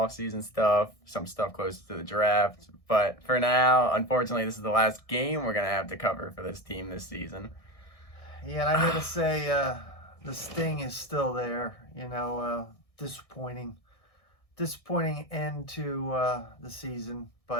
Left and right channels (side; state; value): right; late; 1.6 ms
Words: stuff, some stuff close to the draft. But for now, unfortunately, this is the last game we're going to have to cover for this team this season. Yeah, and I gotta say, the sting is still there. Disappointing end to the season,